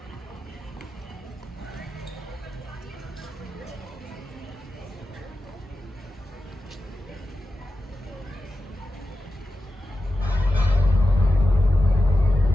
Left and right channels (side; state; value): both; normal; correlation 0.92